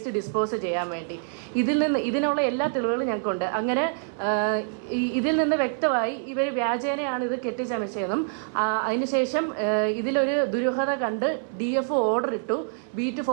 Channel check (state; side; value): silent; left; 61 dB below the other